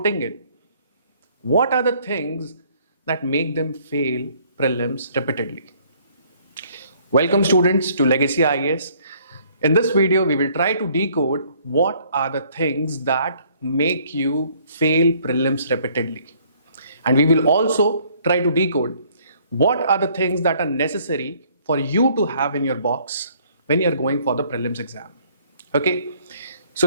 in, what are the things that make them fail prelims repeatedly. Welcome students to Legacy IAS. In this video, we will try to decode what are the things that make you fail prelims repeatedly. And we will also try to decode what are the things that are necessary for you to have in your box when you're going for the prelims exam. Okay, so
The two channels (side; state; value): both; inverted; correlation -0.61